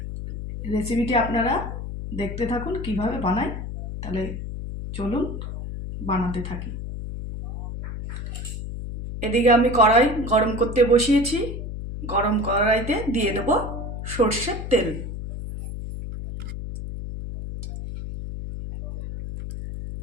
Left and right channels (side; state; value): left; noise; hum, 7 dB below the sound